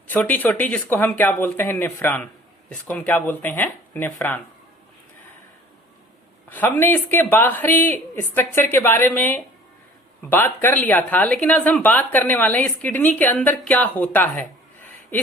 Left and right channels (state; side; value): normal; both; correlation 0.49